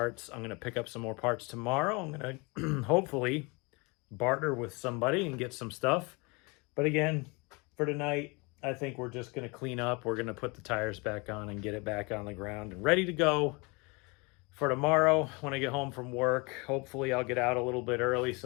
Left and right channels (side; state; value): right; quieter; 28.5 dB